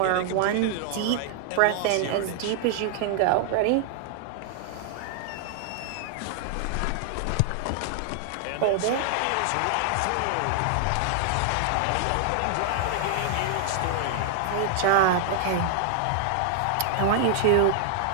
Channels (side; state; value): both; different; correlation 0.00